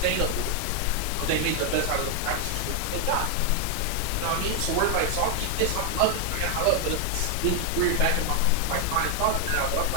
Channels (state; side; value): different; both; correlation 0.00